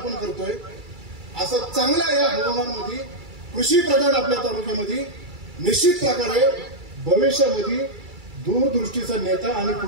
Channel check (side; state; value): left; late; 2.3 ms